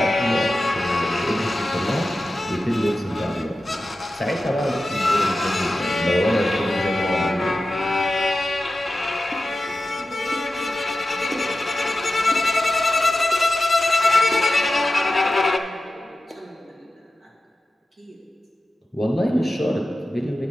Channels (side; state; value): both; normal; correlation 0.94